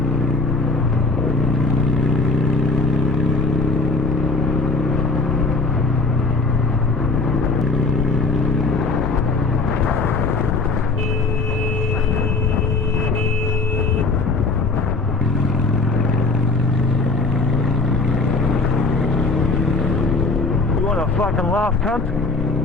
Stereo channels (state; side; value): quieter; right; 3.6 dB